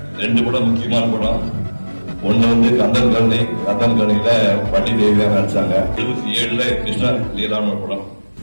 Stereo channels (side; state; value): both; inverted; correlation -1.00